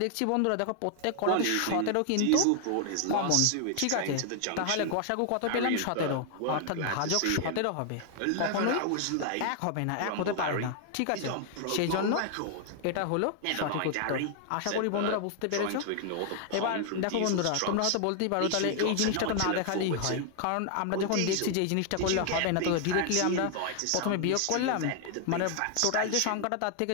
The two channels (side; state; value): both; different; correlation 0.00